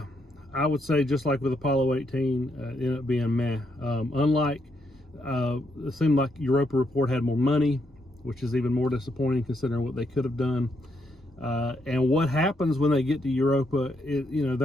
I would say just like with Apollo 18, it ended up being meh. It seemed like Europa Report had more money, which is even more disappointing considering what they could have done. And what happens when they get to Europa,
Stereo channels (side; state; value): both; normal; correlation 0.77